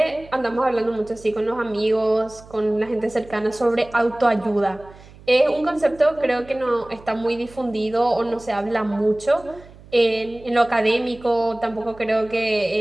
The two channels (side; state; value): right; noise; hum, 21 dB below the sound